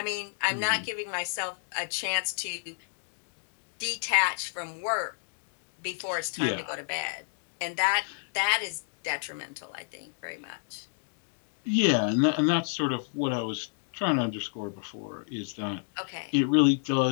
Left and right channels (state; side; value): silent; right; digital silence